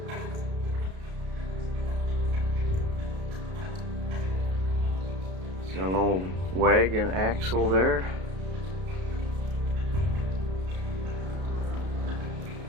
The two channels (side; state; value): left; late; 32 ms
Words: There's an old wagon axle there.